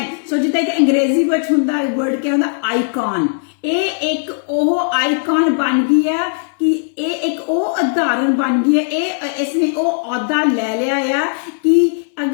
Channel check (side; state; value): right; silent; digital silence